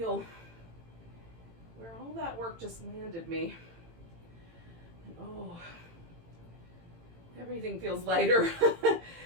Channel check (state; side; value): late; left; 18 ms